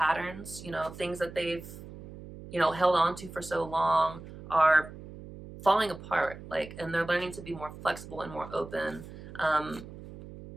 you know, things that they've, you know, held on to for so long are falling apart, like, and they're learning to be more flexible and more open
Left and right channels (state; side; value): noise; right; hum, 14 dB below the sound